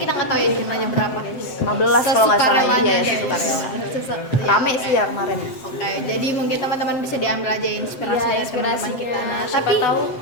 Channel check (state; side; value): late; right; 7.7 ms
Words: nggak tahu ya jumlahnya berapa, guys. 15 kalau nggak salah. Sesukarelanya, Iya, guys. sesukarela. Ya, Rame sih ya kemarin. Oke, jadi mungkin teman-teman bisa diambil aja inspirasi Iya, dari teman-teman kita. Nah, Siapa tapi tahu